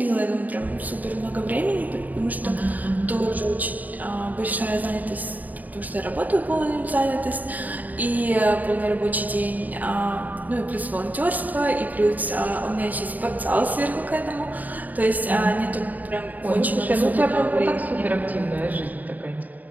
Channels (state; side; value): late; left; 0.080 ms